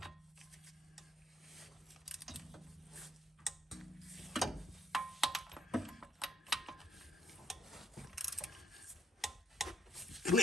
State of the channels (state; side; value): normal; both; correlation 0.70